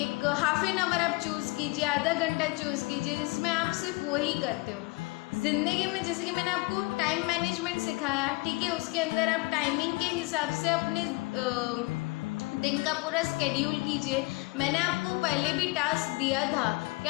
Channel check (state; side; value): quieter; right; 25.3 dB